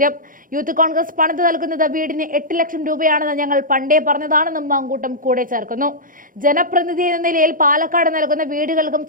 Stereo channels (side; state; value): left; late; 0.40 ms